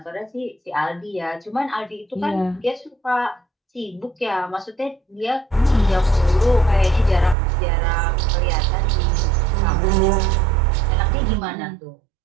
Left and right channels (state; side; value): drops out; left; at 7.4 s